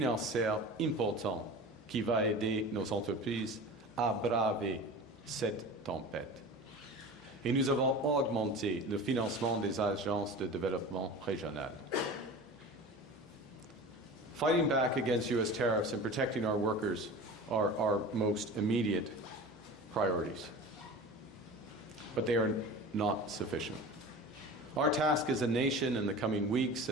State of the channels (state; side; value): normal; both; correlation 0.34